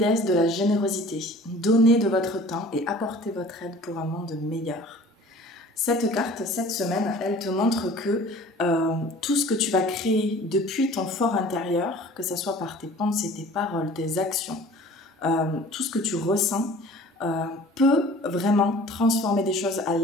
de la générosité. Donnez de votre temps et apportez votre aide pour un monde meilleur. Cette carte, cette semaine, elle te montre que tout ce que tu vas créer depuis ton fort intérieur, que ce soit par tes pensées, tes paroles, tes actions, tout ce que tu ressens, peut vraiment transformer des choses à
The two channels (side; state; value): both; normal; correlation 0.46